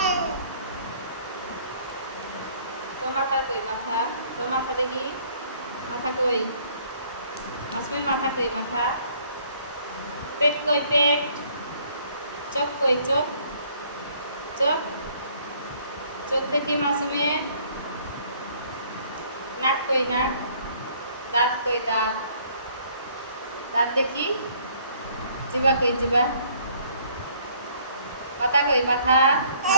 তো মাথা কই মাথা? তো মাথা দেখি, মাথা কই? মাসুমের মাথা কই মাথা? পেট কই পেট? চোখ কই চোখ? চোখ চোখ দেখি মাসুমের। নাক কই নাক? দাঁত কই দাঁত? দাঁত দেখি। জিবা কই জিবা? মাথা কই মাথা?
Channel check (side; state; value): both; inverted; correlation -0.61